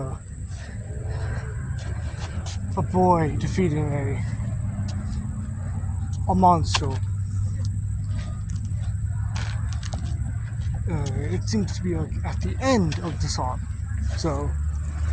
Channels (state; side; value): identical; both; correlation 1.00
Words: a boy defeating a monster. It seems to be like at the end of the song. So